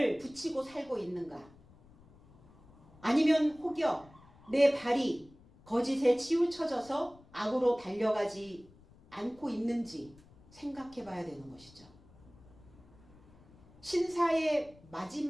붙이고 살고 있는가? 아니면 혹여 내 발이 거짓에 치우쳐져서 악으로 달려가지 않고 있는지 생각해 봐야 되는 것이죠. 신사의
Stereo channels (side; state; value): left; noise; rumble, 25 dB below the sound